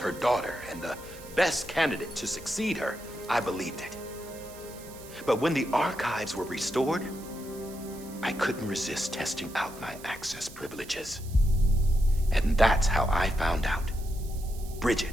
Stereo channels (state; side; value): noise; right; hiss, 18 dB below the sound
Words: daughter and the best candidate to succeed her, I believed it. But when the archives were restored, I couldn't resist testing out my access privileges. And that's how I found out